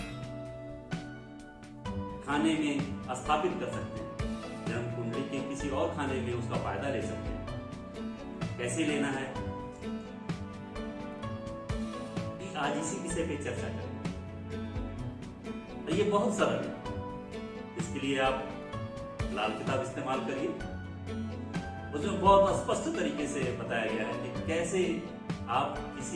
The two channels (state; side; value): identical; both; correlation 1.00